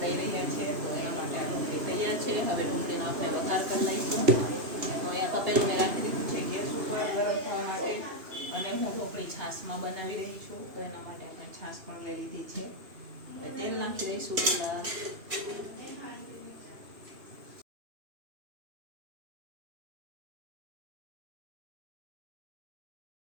દઈ રહ્યા છે, તો એના માટે આ ઢોકળી તૈયાર છે। હવે ઢોકળીનો આપણે વઘાર કરી લઈશું। તો અહીંયા તપેલું મેં રાખી દીધું છે ગેસ ઉપર ગરમ થવા માટે, અને હું ઢોકળી છાશમાં બનાવી રહી છું, તો એના માટે આપણે છાશ પણ લઈ લીધી છે। હવે તેલ નાખી દઈશું પહેલાં।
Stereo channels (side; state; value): left; late; 2.8 ms